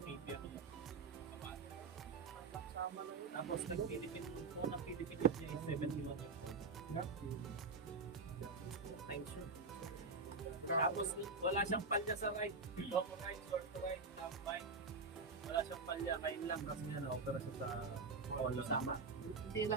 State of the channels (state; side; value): quieter; left; 4.2 dB